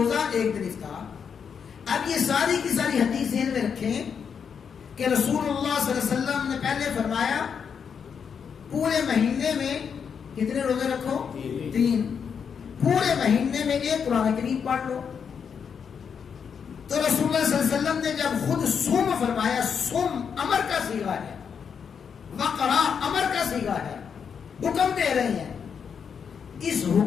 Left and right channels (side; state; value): right; quieter; 6.8 dB